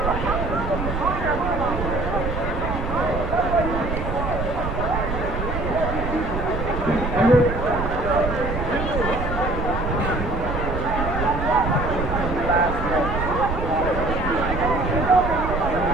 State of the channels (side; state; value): right; noise; rumble, 4 dB below the sound